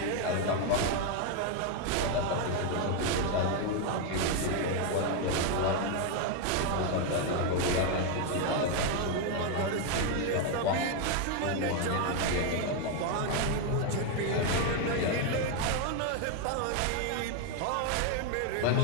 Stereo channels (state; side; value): different; both; correlation 0.01